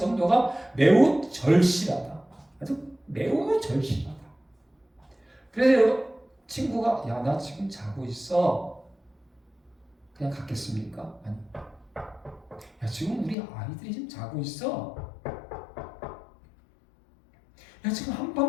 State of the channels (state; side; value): drops out; right; at 13.4 s